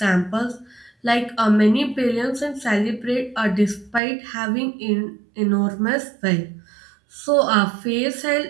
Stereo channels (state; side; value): drops out; left; at 4.0 s